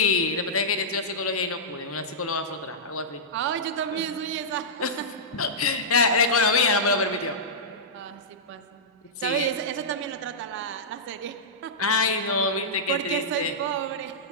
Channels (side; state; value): both; normal; correlation -0.14